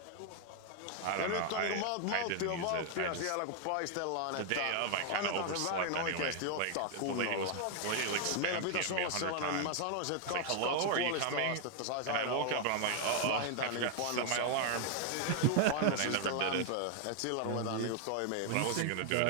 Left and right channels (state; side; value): different; both; correlation 0.00